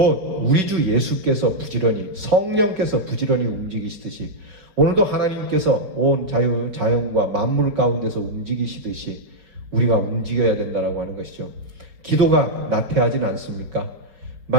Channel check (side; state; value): left; late; 5.2 ms